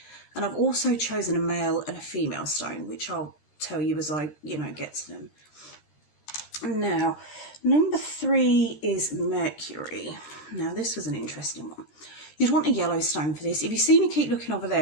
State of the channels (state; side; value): late; right; 13 ms